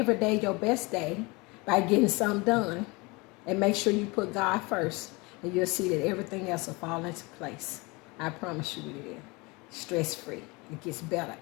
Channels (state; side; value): quieter; right; 26.0 dB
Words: day your best day by getting something done. And make sure you put God first. And you'll see that everything else will fall into place. I promise you it will. Stress-free. It gets better